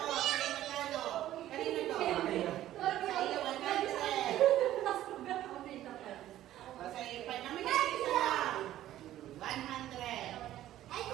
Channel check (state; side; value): quieter; left; 13.4 dB